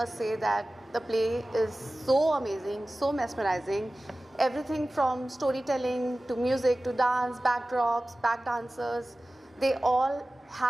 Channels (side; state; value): both; normal; correlation 0.96